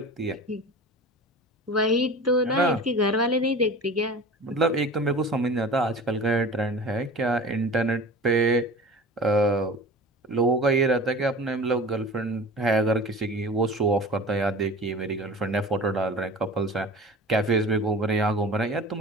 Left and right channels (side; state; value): both; normal; correlation 0.37